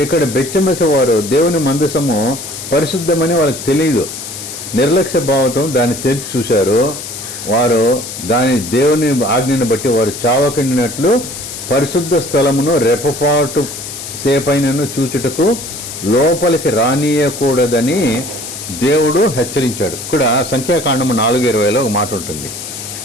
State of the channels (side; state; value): left; noise; hiss, 9 dB below the sound